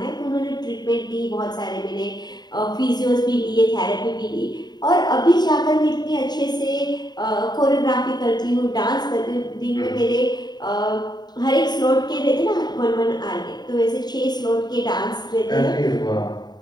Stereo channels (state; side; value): late; right; 0.20 ms